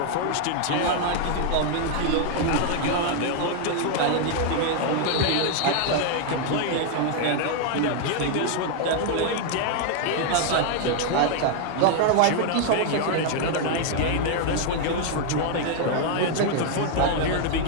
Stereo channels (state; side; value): different; both; correlation 0.00